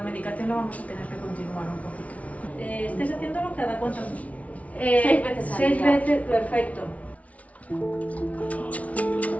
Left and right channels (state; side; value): late; right; 0.067 ms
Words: medicación la vamos a tener que continuar un poquito. ¿Estáis haciéndolo cada cuánto? 6 veces. 6 veces, perfecto.